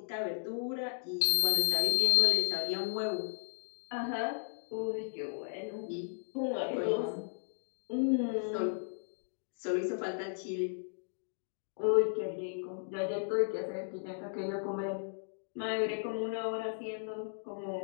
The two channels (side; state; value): right; silent; digital silence